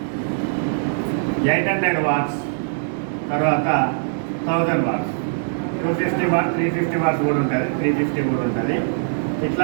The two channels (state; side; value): silent; left; digital silence